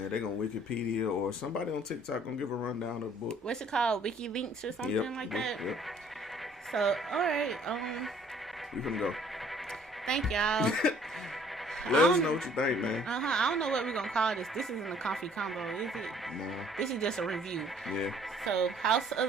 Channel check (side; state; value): both; normal; correlation 0.58